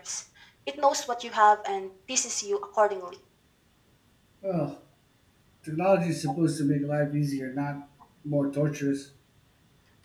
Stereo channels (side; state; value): both; identical; correlation 1.00